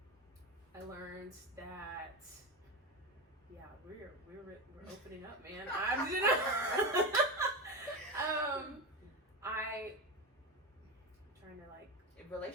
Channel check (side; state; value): both; normal; correlation 0.19